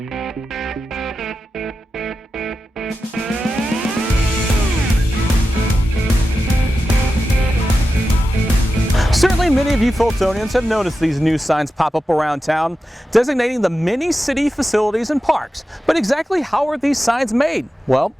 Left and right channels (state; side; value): normal; both; correlation 0.92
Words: Certainly many of you Fultonians have noticed these new signs pop up around town designating the many city facilities and parks. But exactly how are these signs made? Well,